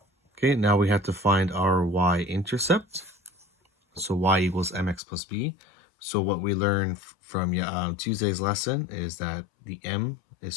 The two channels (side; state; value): right; drops out; at 5.0 s